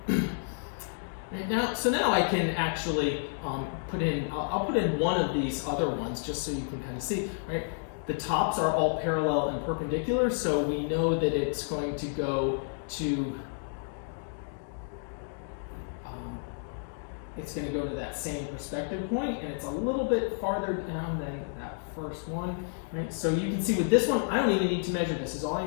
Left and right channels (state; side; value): silent; right; digital silence